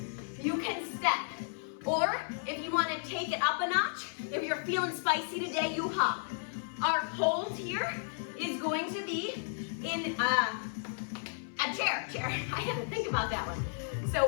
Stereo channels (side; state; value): right; silent; 55 dB below the other